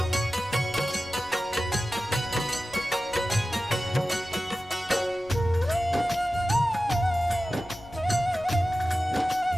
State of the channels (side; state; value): left; noise; rumble, 22 dB below the sound